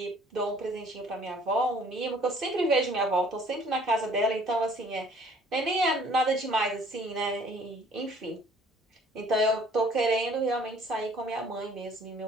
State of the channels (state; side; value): normal; both; correlation 0.56